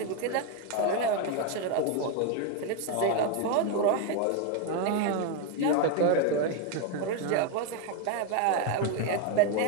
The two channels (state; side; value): different; both; correlation 0.01